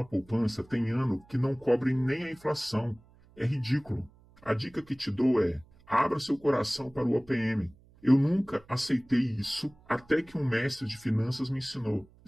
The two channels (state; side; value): noise; right; hum, 28 dB below the sound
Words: poupança tem ano que não cobre nem a inflação. É ridículo. A dica que te dou é: abra seu coração para o OPM. Eu nunca aceitei isso até que um mestre de finanças me ensinou.